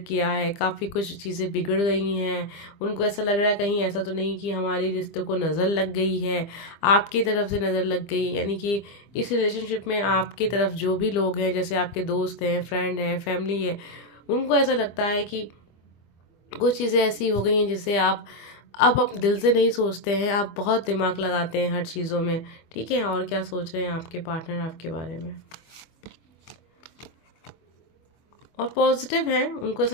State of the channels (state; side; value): late; right; 25 ms